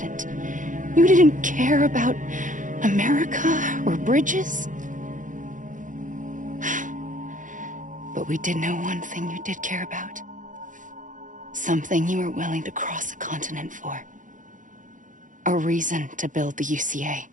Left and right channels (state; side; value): late; left; 0.38 ms